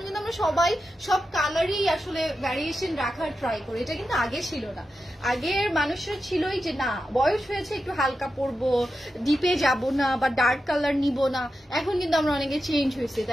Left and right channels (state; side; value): normal; both; correlation 0.90